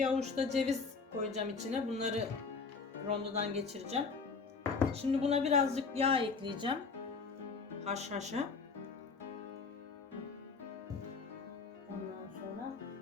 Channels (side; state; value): right; quieter; 4.7 dB